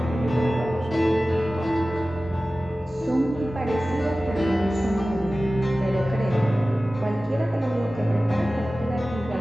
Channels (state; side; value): normal; both; correlation 0.96